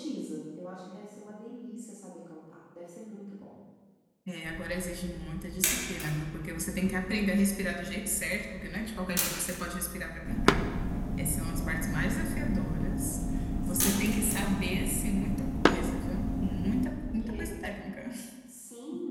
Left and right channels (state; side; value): identical; both; correlation 1.00